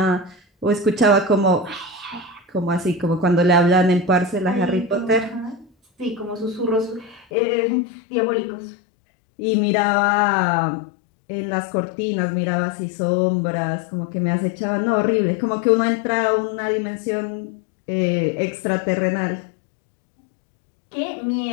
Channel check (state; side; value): drops out; right; at 7.2 s